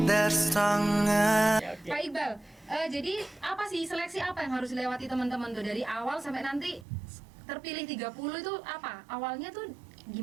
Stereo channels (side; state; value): left; drops out; at 6.9 s